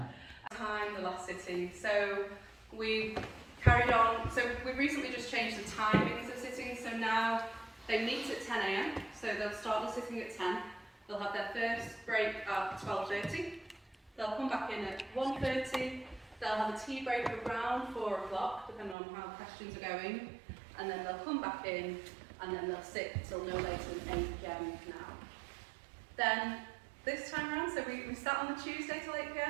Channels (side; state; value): left; drops out; at 18.9 s